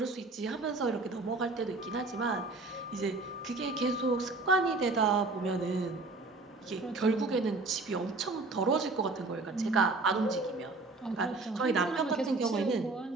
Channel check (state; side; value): quieter; left; 3.5 dB